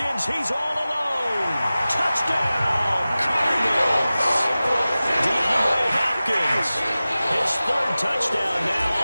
he's all alone. Touchdown, Cardinals. DeAndre Hopkins, his 3rd touchdown now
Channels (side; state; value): both; inverted; correlation -0.96